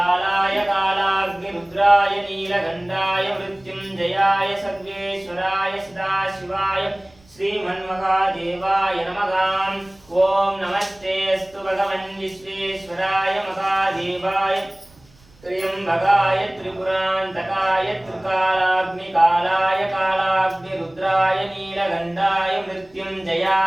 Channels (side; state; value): right; noise; rumble, 29 dB below the sound